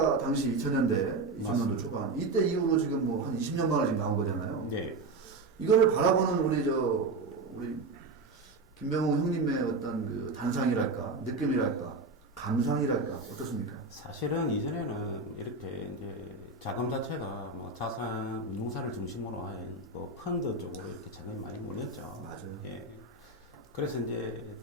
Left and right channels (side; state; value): left; quieter; 3.4 dB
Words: 당시 2000년대, 2000년도 맞습니다. 초반 이때 이후로 지금 뭐 한 20년 만에 지금 나온 거잖아요. 네. 이거를 바라보는 우리 김병웅 형님의 어떤 그 단상이랄까, 느낌이랄까, 감상이랄까 어떻습니까? 사실은 이전에는 이렇게 이제 자금 자체가 뭐 자산 운용사를 중심으로 한 뭐 펀드 쪽으로 이렇게 자금이 많이 몰렸죠. 맞아요. 예. 그래서 이제